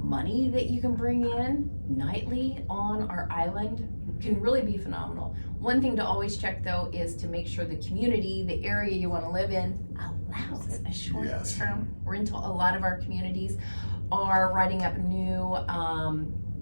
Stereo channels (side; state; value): both; inverted; correlation -1.00